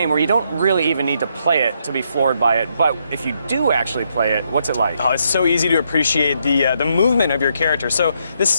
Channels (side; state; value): both; inverted; correlation -0.76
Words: where you don't really even need to play it to be floored by it. But if you do actually play it, what's it like? Oh, it's so easy to appreciate the movement of your character. So